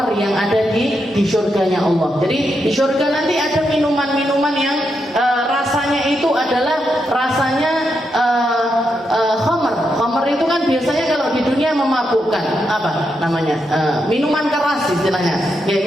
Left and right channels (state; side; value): normal; both; correlation 0.83